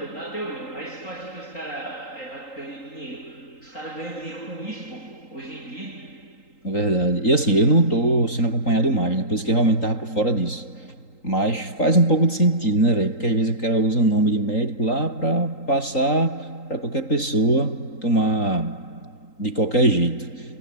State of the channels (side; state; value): right; late; 3.8 ms